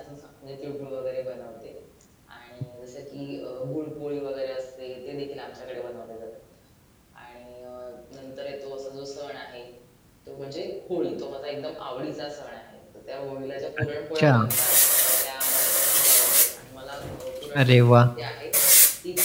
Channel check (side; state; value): both; identical; correlation 1.00